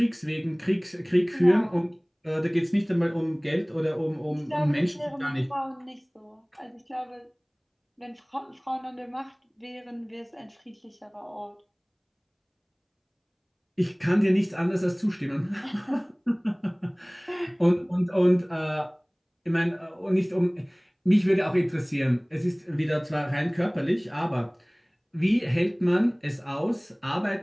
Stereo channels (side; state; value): both; identical; correlation 1.00